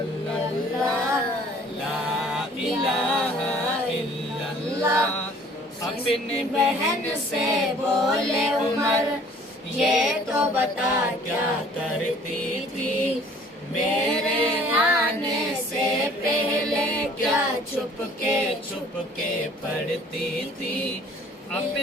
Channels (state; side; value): normal; both; correlation 0.54